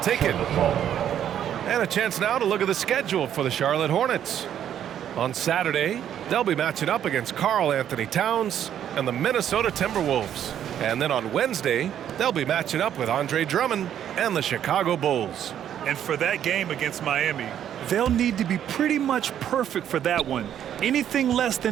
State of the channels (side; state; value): left; quieter; 10.1 dB